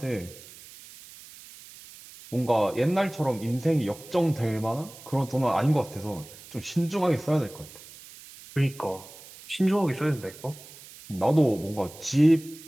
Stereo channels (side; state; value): right; noise; hiss, 19 dB below the sound